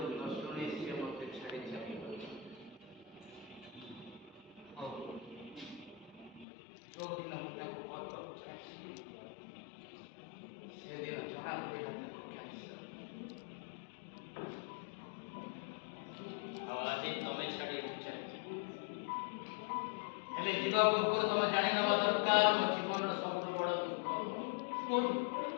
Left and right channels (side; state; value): right; drops out; at 6.5 s